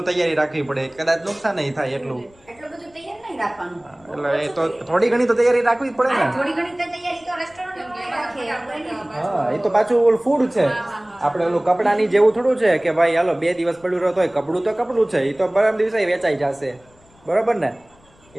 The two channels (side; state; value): left; noise; rumble, 30 dB below the sound